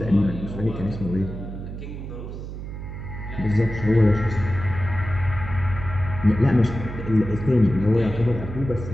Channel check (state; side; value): noise; right; hum, 9 dB below the sound